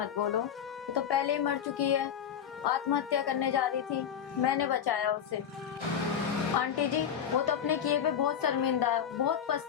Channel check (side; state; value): right; quieter; 8.6 dB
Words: बोलो, वो तो पहले ही मर चुकी है, आत्महत्या करने जा रही थी, मैंने बचाया उसे। आंटी जी वो तो अपने किए पे बहुत शर्मिंदा है, बहुत